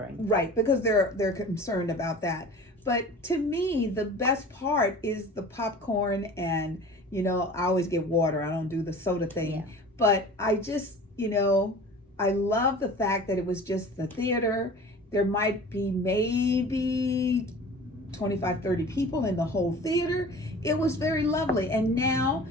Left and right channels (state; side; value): normal; both; correlation 0.41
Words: Right, because they're concerned about that. But to me, the best part is the popcorn and, I always get water. I don't do the soda thing. Yeah. But I just, I love the fact that it was just the theater. There might be maybe 25, 30 people in the whole theater. It was very lovely. And now,